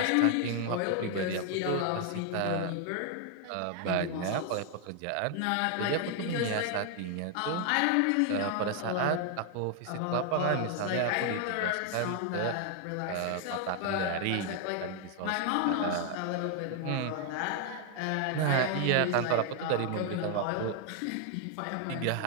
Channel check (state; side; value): different; both; correlation 0.00